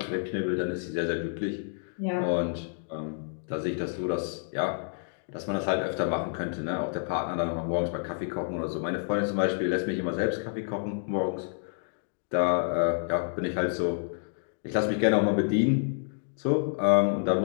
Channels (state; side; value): silent; right; digital silence